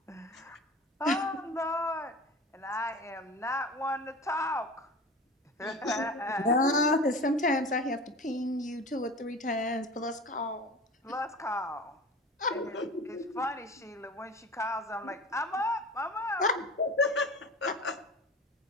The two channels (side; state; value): both; normal; correlation 0.35